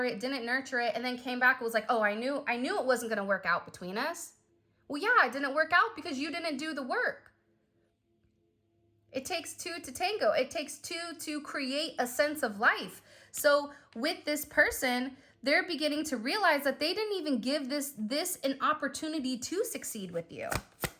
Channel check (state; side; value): identical; both; correlation 1.00